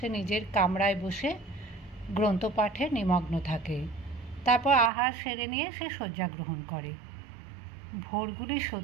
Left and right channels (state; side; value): drops out; left; at 4.9 s